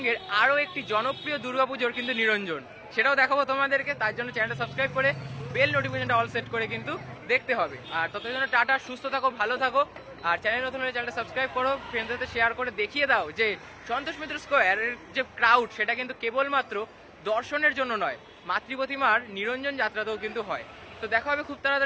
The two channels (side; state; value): both; identical; correlation 1.00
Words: আরও একটি জনপ্রিয় দুর্গাপুজোর কিন্তু নিরঞ্জন, সেটাও দেখাবো তোমাদেরকে। তার জন্য চ্যানেলটা সাবস্ক্রাইব করে বেল নোটিফিকেশনটা অল সেট করে কিন্তু দেখতে হবে। আর ততদিন জন্য টাটা, সুস্থ থাকো, ভালো থাকো। আর চ্যানেল নতুন হলে চ্যানেলটা সাবস্ক্রাইব করো, ফ্রেন্ডদের সাথে শেয়ার করে দেখিয়ে দাও যে সন্তোষ মিত্র স্কোয়ারের যে ক্রাউড সেটা কিন্তু কেবলমাত্র দর্শনের জন্য নয়, মাতৃপ্রতিমার নিরঞ্জন যাত্রাতেও কিন্তু হয়। তো দেখা হবে খুব